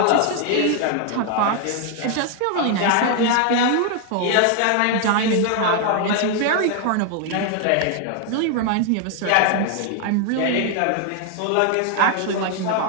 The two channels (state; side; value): different; both; correlation 0.00